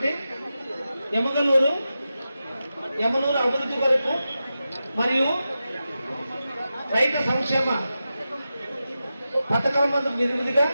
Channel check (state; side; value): inverted; both; correlation -0.91